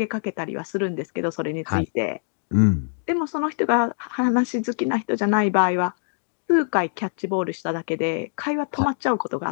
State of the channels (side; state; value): right; silent; digital silence